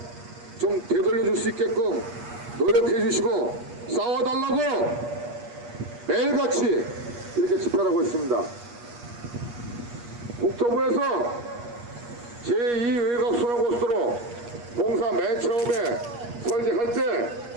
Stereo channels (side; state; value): left; late; 8.4 ms